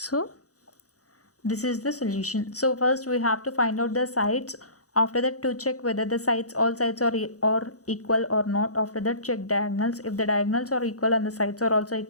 this is the solution. So first we have to find out the sides. After that, to check whether the all sides are equal or not. After that, check diagonals. If the diagonals are equal and the sides are also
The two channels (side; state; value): right; late; 0.66 ms